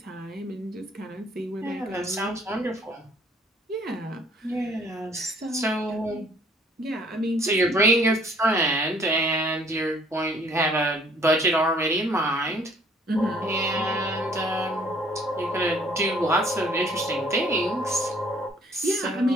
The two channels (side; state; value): both; normal; correlation 0.59